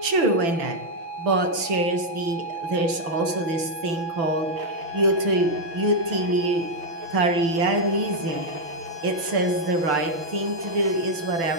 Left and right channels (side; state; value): left; late; 6.0 ms